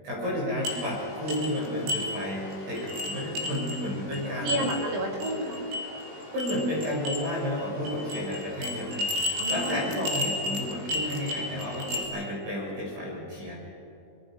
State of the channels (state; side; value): late; left; 20 ms